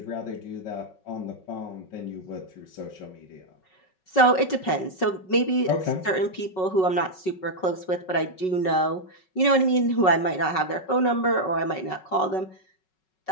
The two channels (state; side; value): late; right; 5.4 ms